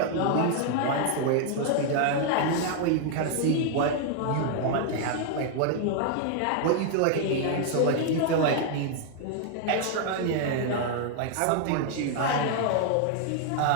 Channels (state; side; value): different; both; correlation 0.00